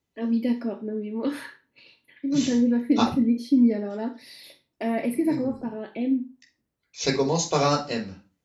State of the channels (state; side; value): identical; both; correlation 1.00